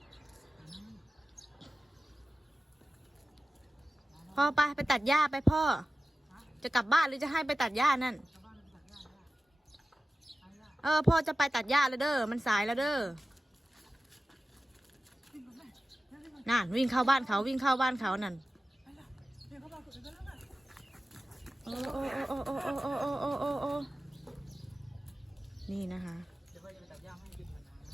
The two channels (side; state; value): both; normal; correlation 0.95